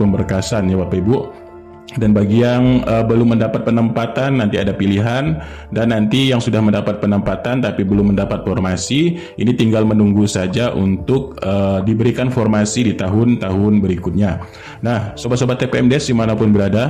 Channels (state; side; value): identical; both; correlation 1.00